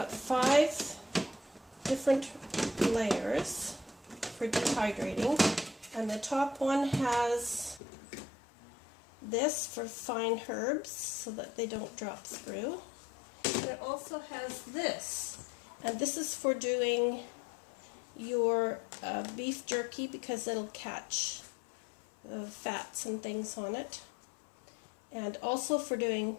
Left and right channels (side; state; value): right; drops out; at 7.8 s